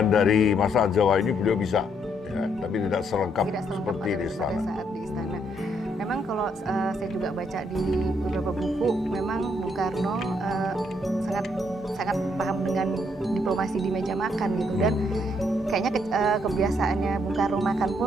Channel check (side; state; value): both; normal; correlation 0.72